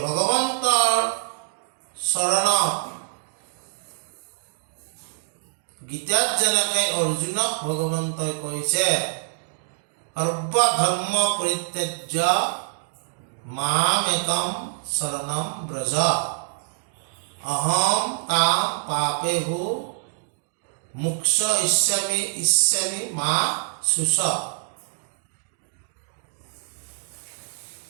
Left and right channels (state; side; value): silent; left; digital silence